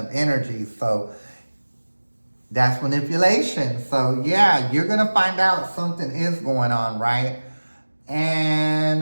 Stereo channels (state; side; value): inverted; both; correlation -1.00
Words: energy, so that's manipulation. So yeah, you're gonna find out something is going on, right?